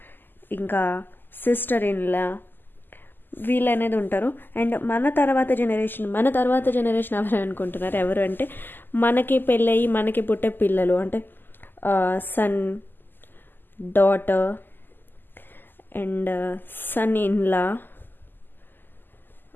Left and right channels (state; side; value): late; right; 0.092 ms